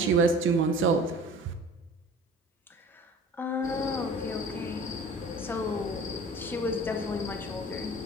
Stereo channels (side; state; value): both; normal; correlation 0.43